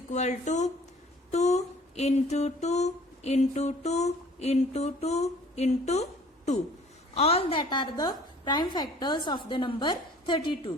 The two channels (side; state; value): both; normal; correlation 0.52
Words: to 2 into 2 into 2 into 2 into 2. All that are the prime factors of the number